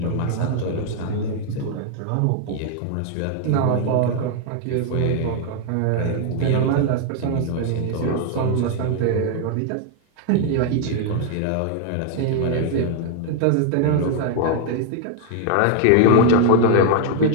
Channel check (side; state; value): both; different; correlation 0.00